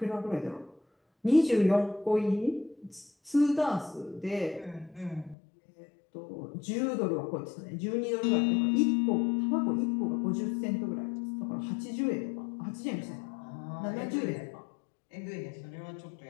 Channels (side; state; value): right; drops out; at 5.4 s